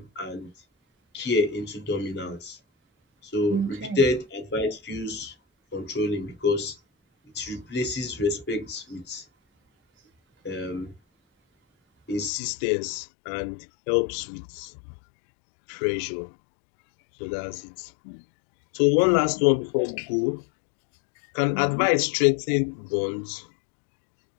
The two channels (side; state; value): right; drops out; at 12.3 s